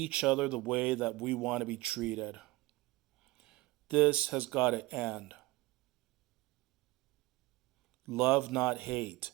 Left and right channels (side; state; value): left; quieter; 20.1 dB